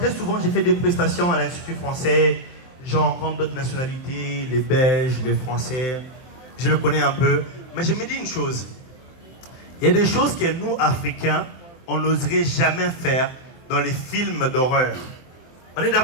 souvent, j'ai fait des prestations à l'Institut français. J'en rencontre d'autres nationalités, les Belges, les Français. Je le connais un peu. Mais je me dis une chose. Il y a des choses que nous, Africains, on n'oserait jamais faire dans les films d'horreur. On est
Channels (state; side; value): late; right; 24 ms